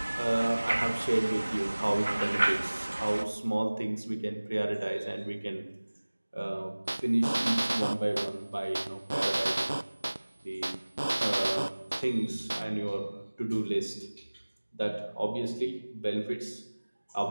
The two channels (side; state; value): both; inverted; correlation -1.00